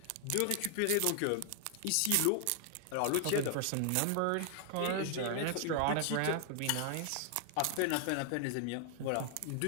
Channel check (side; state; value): both; different; correlation 0.00